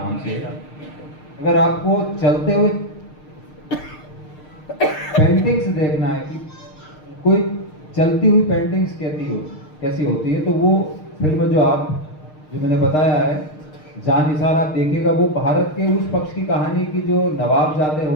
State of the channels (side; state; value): right; late; 6.5 ms